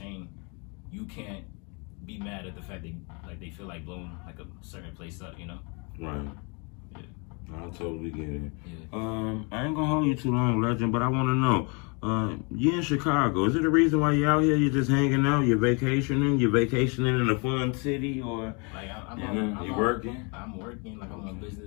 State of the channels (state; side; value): quieter; right; 32.9 dB